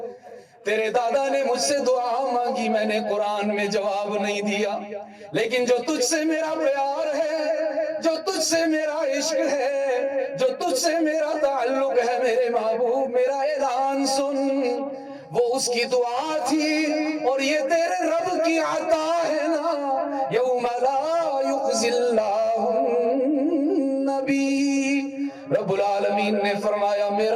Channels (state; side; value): identical; both; correlation 1.00